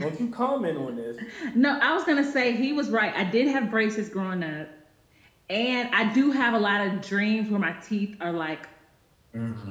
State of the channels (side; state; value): both; identical; correlation 1.00